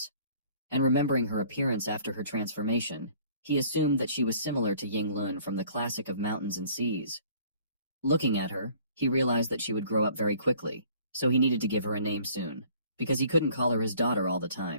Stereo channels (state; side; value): inverted; both; correlation -0.54